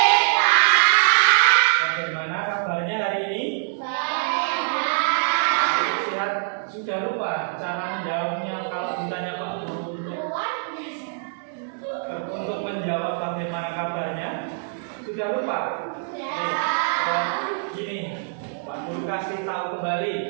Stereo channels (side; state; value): left; silent; 62 dB below the other